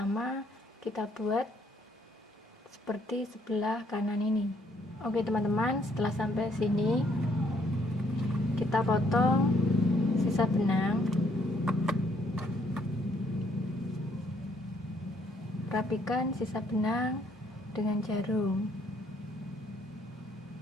kita buat seperti sebelah kanan ini. Oke teman-teman, setelah sampai sini kita potong sisa benang, rapikan sisa benang dengan jarum.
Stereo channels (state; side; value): normal; both; correlation 0.68